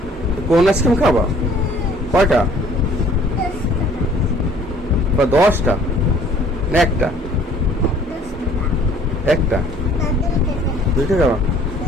কোন আইসক্রিম খাবা কয়টা বা 10টা না একটা একটা 2টা খাবা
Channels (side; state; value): both; normal; correlation 0.56